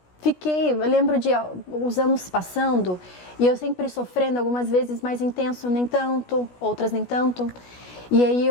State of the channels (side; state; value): right; late; 16 ms